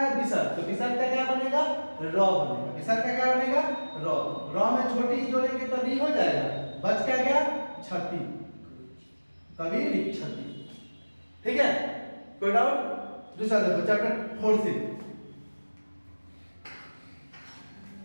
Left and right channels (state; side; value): inverted; both; correlation -1.00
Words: विसर्ग। तो विसर्ग का क्या बनेगा, र बनेगा। विसर्ग का क्या बनेगा, र। र में छोटी जोड़ेंगे तो री हो जाएगा, बच क्या गया, छति, कवि इच्छति। ठीक है, कोई डाउट। दूसरा देखो चैप्टर 4 से,